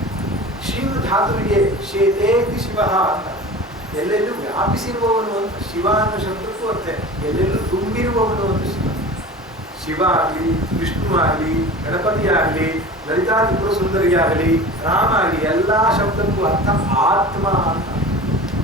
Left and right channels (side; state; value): both; normal; correlation 0.36